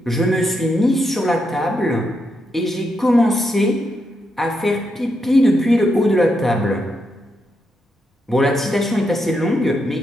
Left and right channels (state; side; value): normal; both; correlation 0.82